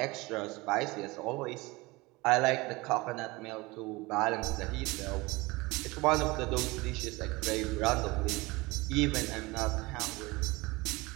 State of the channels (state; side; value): quieter; left; 22.8 dB